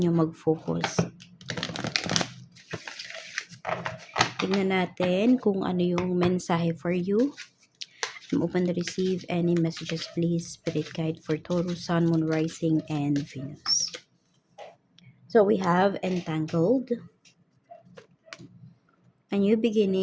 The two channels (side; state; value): both; identical; correlation 1.00